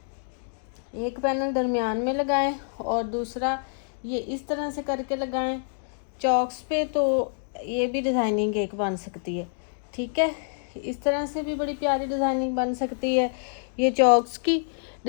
एक पैनल दरमियान में लगाएं और दूसरा ये इस तरह से करके लगाएं चॉक्स पे, तो ये भी डिज़ाइनिंग एक बन सकती है। ठीक है, इस तरह से भी बड़ी प्यारी डिज़ाइनिंग बन सकती है। ये चॉक्स की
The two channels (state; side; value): silent; right; digital silence